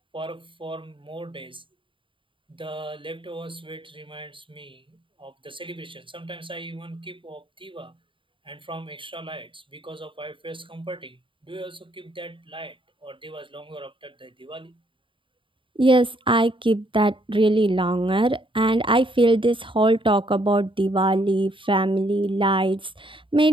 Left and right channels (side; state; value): left; late; 0.25 ms